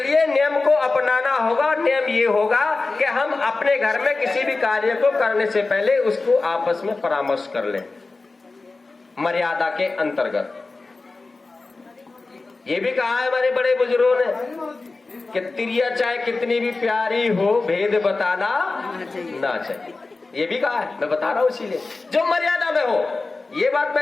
नियम को अपनाना होगा। नियम ये होगा कि हम अपने घर में किसी भी कार्य को करने से पहले उसको आपस में परामर्श कर लें, मर्यादा के अंतर्गत। ये भी कहा है हमारे बड़े बुजुर्गों ने कि तिरिया चाहे कितनी भी प्यारी हो, भेद बताना ना चाहिए। ये भी कहा है, मैं बता रहा हूं इसीलिए, जो मर्यादा में हो। ये बात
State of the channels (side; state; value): right; quieter; 3.6 dB